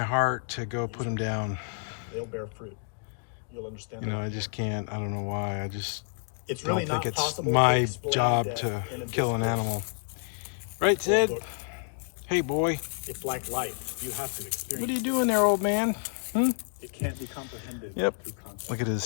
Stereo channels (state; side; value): silent; right; 58 dB below the other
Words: heart to go put him down. They'll bear fruit. You'll understand. You know, I just can't. I don't know why. I just It's don't really think not it's possible to my explain job death to in a kill an discourse. animal. Right, Sid? Look, Hey, boy. it's like life. You have to experience. What are you doing there, old man? It can't be comprehended. Yep. through concept.